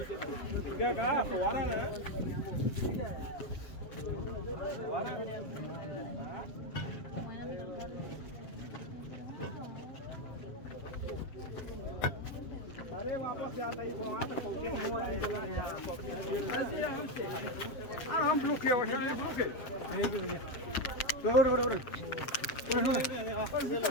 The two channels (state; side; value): late; right; 7.7 ms